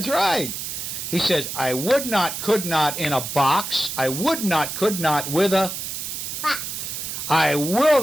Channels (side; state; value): right; noise; hiss, 6 dB below the sound